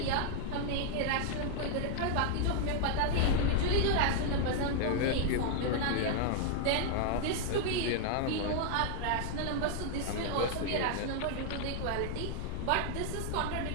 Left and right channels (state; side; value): different; both; correlation 0.00